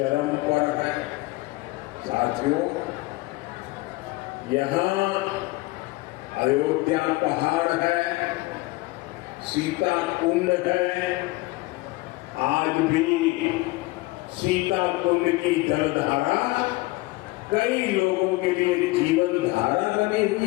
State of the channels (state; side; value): quieter; right; 21.4 dB